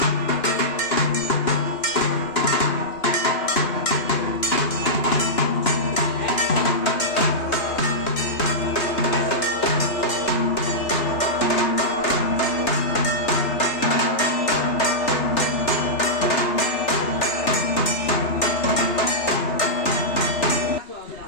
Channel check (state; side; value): late; right; 3.4 ms